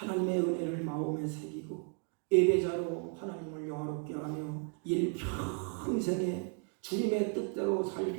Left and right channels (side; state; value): left; quieter; 39.0 dB